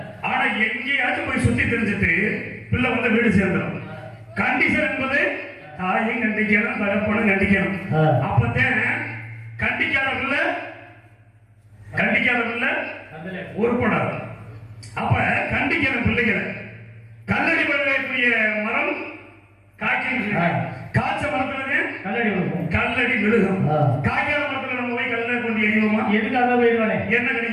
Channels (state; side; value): identical; both; correlation 1.00